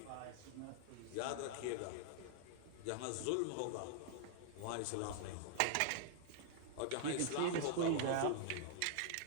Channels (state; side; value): different; both; correlation -0.01